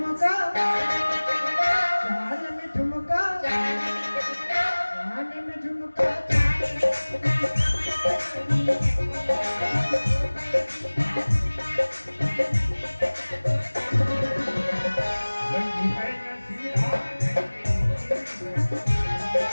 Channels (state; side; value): inverted; both; correlation -1.00